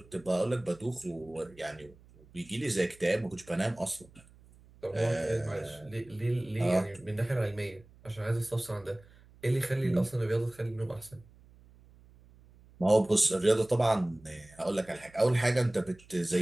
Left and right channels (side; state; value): right; noise; hum, 25 dB below the sound